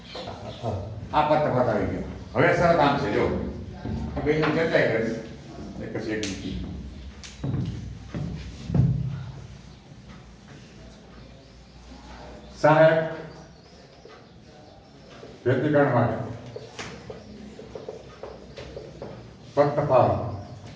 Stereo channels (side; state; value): both; identical; correlation 1.00